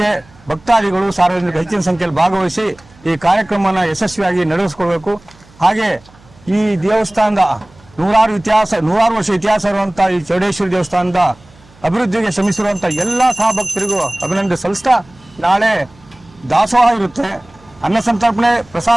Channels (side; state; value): right; noise; hum, 27 dB below the sound